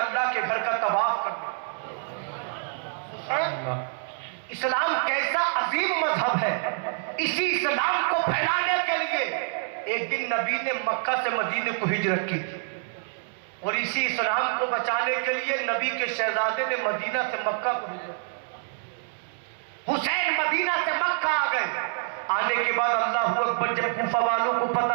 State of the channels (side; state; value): left; silent; 60 dB below the other